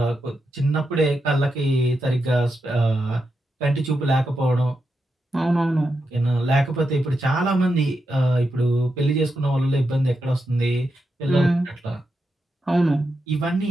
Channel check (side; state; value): both; normal; correlation 0.86